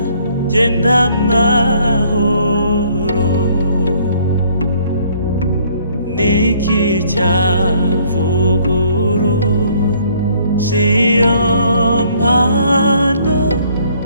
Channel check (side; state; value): both; inverted; correlation -0.62